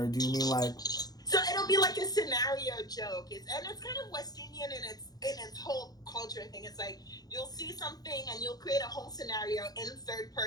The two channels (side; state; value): right; late; 0.19 ms